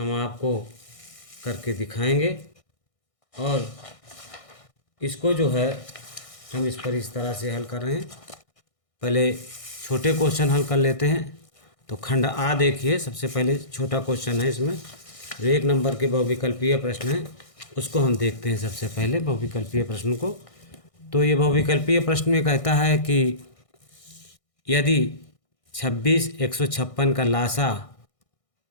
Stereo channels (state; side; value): late; right; 1.6 ms